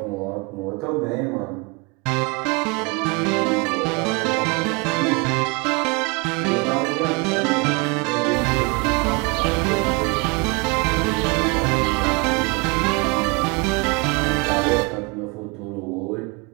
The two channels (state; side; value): quieter; left; 28.9 dB